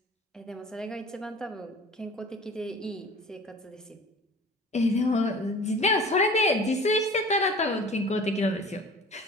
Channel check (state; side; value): normal; both; correlation 0.43